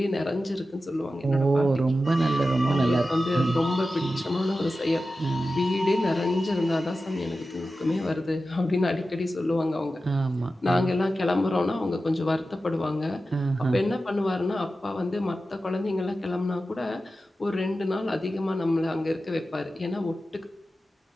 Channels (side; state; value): both; normal; correlation 0.93